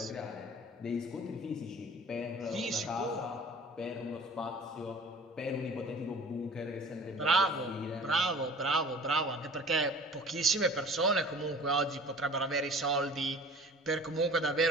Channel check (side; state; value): both; normal; correlation 0.45